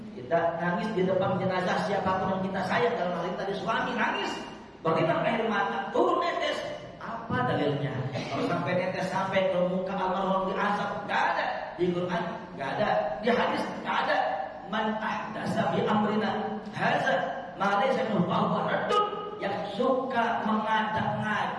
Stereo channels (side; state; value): both; identical; correlation 1.00